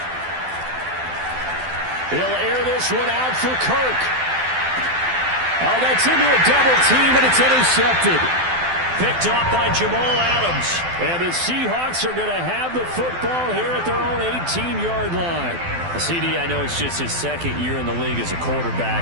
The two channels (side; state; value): left; late; 12 ms